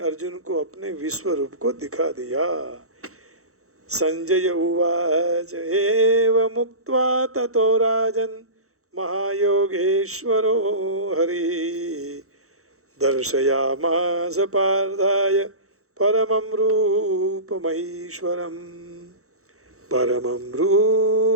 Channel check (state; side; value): late; left; 0.64 ms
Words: को अपने विश्व रूप को दिखा दिया। संजय उवाच एव मुक्त्वा ततो राजन् महायोगेश्वरो हरि दर्शयामास पार्थाय परमं रूपमैश्वरम् परमं